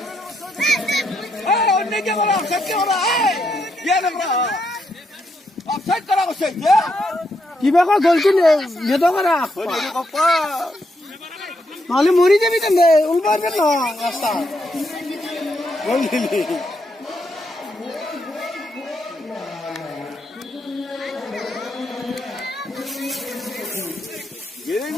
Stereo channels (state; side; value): normal; both; correlation 0.78